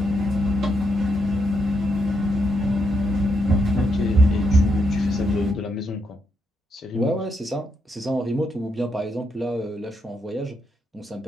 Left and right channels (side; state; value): both; normal; correlation 0.79